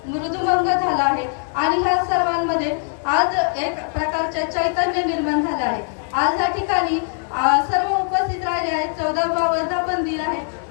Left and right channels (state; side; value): silent; right; 57 dB below the other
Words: मृदुमंग झालं आहे आणि ह्या सर्वांमध्ये आज एक प्रकारचे चैतन्य निर्माण झालं आहे। आज या ठिकाणी सर्व उपस्थित राहिले आहेत। 14वा वर्धापन दिन आहे